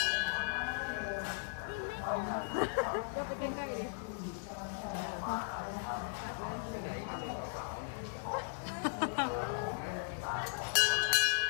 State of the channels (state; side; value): silent; right; 53 dB below the other